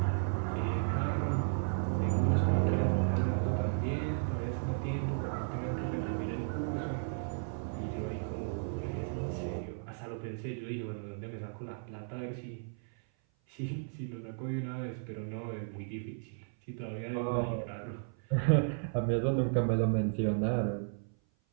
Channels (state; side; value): silent; left; 55 dB below the other